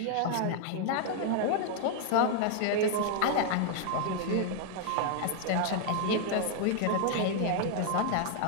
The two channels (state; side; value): different; both; correlation 0.00